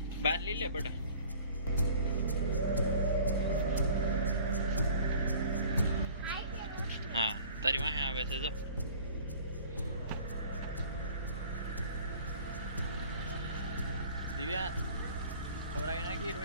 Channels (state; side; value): inverted; both; correlation -0.48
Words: बाहर ले ले बेटा हाँ तारी वहां आवे से जो दिव्या खवराई नाखी